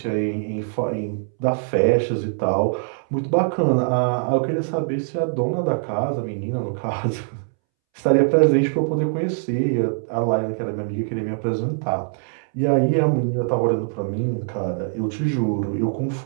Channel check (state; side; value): silent; left; 64 dB below the other